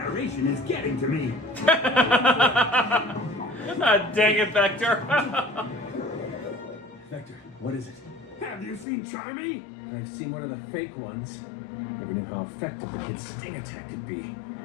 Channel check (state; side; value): drops out; right; at 8.8 s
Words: is getting to me. Dang it, Vector. Vector, what is it? Have you seen Charmy? I've seen one of the fake ones. Never knew how effective the kid's sting attack could be.